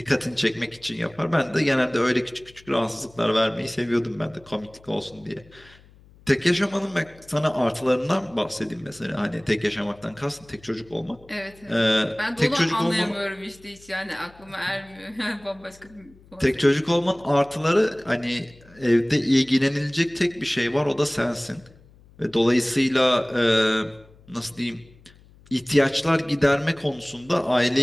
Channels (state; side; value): noise; left; hum, 26 dB below the sound